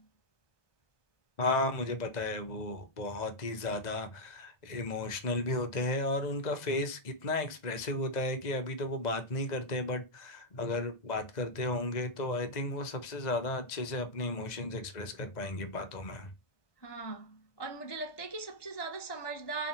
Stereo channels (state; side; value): late; right; 1.9 ms